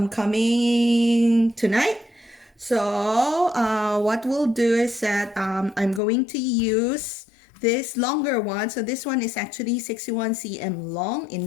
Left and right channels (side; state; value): right; drops out; at 6.0 s